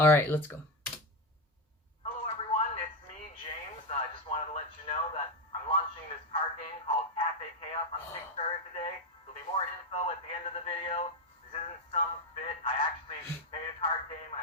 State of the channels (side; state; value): both; normal; correlation 0.10